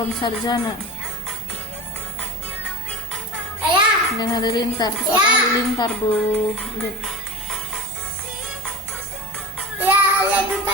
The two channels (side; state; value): both; normal; correlation 0.29